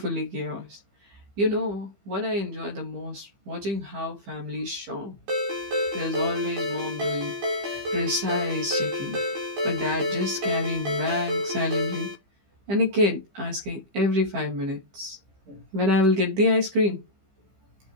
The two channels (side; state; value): left; late; 15 ms